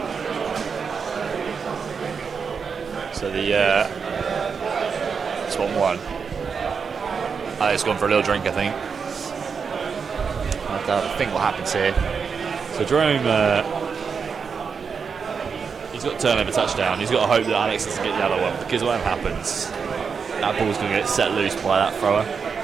So the Swan one. It's gone for a little drink, I think. I think what happens here. So Jerome, he's got a turnover touchdown. He's got to hope that Alex doesn't get the other one, because what happens, that ball's going to get set loose by that thrower.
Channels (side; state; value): left; quieter; 5.9 dB